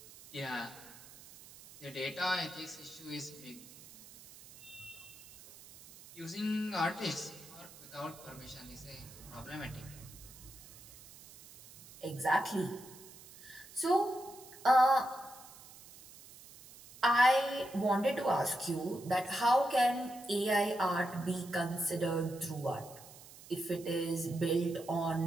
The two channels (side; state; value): right; noise; hiss, 19 dB below the sound